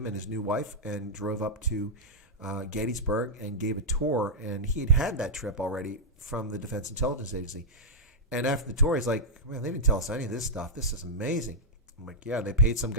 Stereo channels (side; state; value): both; normal; correlation -0.07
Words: and his new wife, and drove up to Gettysburg and gave a tour. And he had that trip already from the Defense Intelligence Agency. And after the tour, he's like, man, they didn't tell us any of this stuff. This is amazing. I'm like, yeah, they paid some